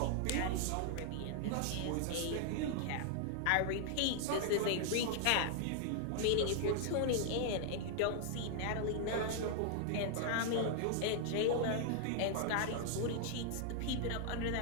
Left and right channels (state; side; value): different; both; correlation -0.01